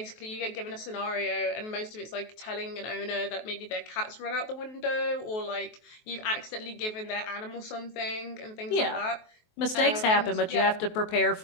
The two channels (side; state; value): right; late; 23 ms